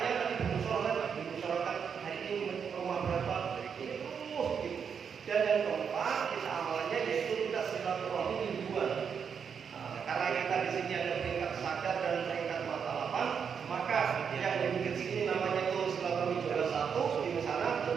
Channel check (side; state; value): left; quieter; 6.9 dB